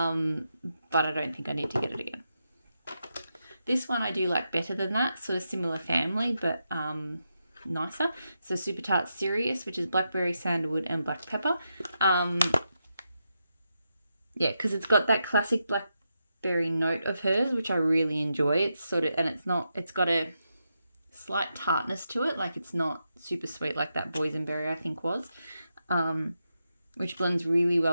I don't think I need to get it again. This one I do like better than that, sort of similar family, but nicer. So Super Tart Serious, which is blackberry, sandalwood, and black pepper. Yeah, because it's got that classic blackberry note of hers, which I really enjoy. It's sort of, and it's got a slight tartness to it, like it's not super sweet like that boysenberry I think was, which blends really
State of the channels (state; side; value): inverted; both; correlation -0.85